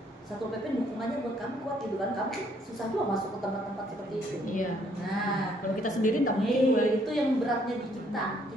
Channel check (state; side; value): normal; both; correlation 0.67